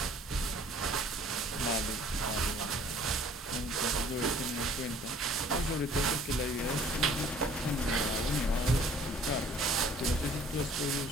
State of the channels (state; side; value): normal; both; correlation 0.54